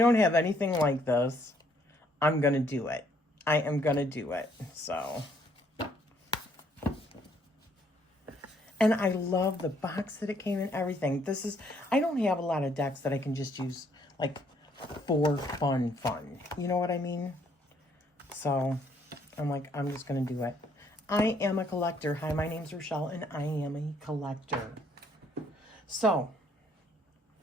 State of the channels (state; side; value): normal; both; correlation 0.67